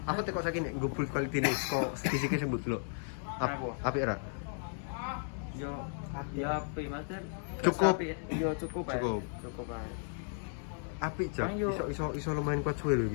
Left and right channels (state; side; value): silent; right; 55 dB below the other